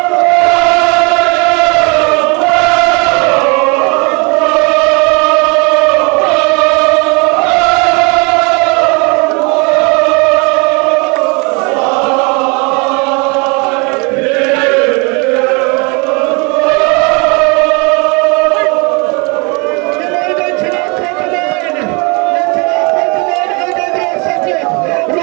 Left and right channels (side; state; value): left; quieter; 30.6 dB